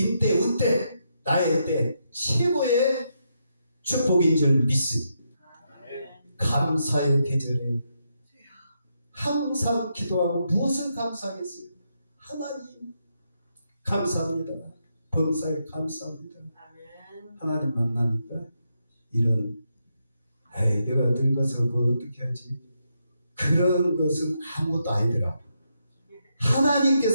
운대, 나의 때 최고의 축복인 줄 믿습니다. 감사의 계절에 항상 기도하고 무엇을 감사하겠어요? 하나님 감사합니다. 범사에 감사합니다. 하나님 만나니까 이런 내가 늙어서 뭐 어떻게 하지? 그런 것은 아무것도 아니더라.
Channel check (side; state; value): both; inverted; correlation -0.81